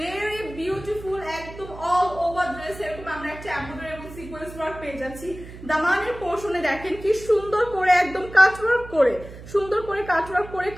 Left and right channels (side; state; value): right; noise; hum, 15 dB below the sound